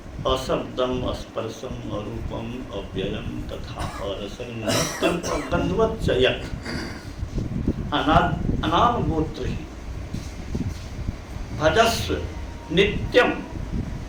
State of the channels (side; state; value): both; identical; correlation 1.00